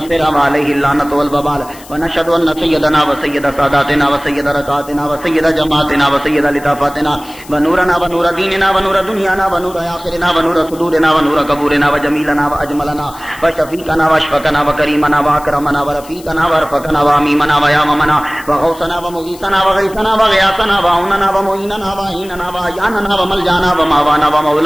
وعليه اللعنة والوبال ونشهد ان سيدنا وسيد ساداتنا وسيد ركعاتنا وسيد جماعتنا وسيد لطافاتنا ونورنا ونور ديننا ونور دنيانا ونور آخرنا ونور صدورنا ونور قبورنا وجميلنا وأجملنا وشفيقنا واشفقنا وكريمنا وأكرمنا ورفيقنا ورفقنا وأميمنا وياممنا وغوثنا ومغيثنا وغيثنا وغياثنا وعوننا ومعيننا وعيننا وعياننا وملجانا وماوانا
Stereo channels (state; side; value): noise; left; hiss, 20 dB below the sound